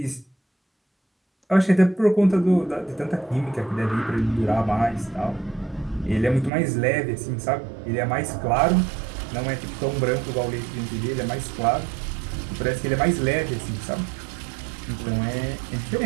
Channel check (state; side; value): drops out; left; at 6.5 s